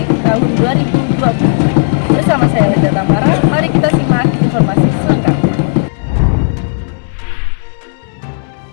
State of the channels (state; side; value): silent; right; digital silence